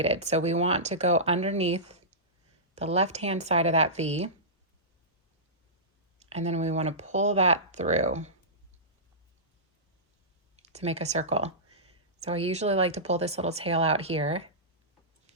So we want to go underneath the left-hand side of that V. And then we want to pull that through to make a circle. So I usually like to pull this little tail out here.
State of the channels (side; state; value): both; normal; correlation -0.18